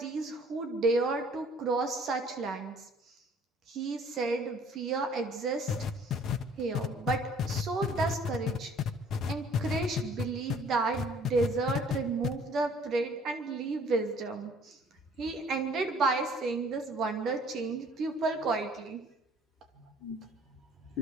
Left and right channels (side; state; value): both; normal; correlation 0.56